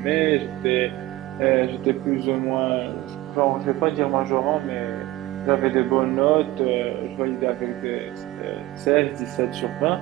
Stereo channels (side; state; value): left; quieter; 17.5 dB